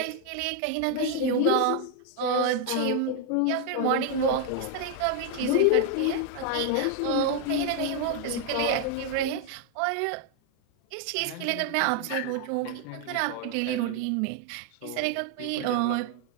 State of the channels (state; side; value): different; both; correlation 0.00